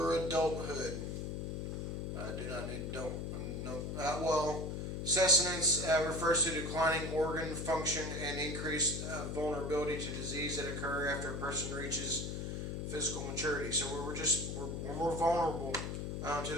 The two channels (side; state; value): left; noise; hum, 4 dB below the sound